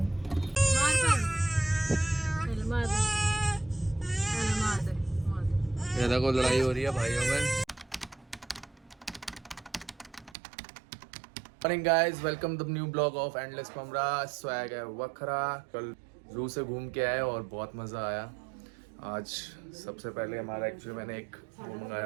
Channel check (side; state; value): left; drops out; at 10.4 s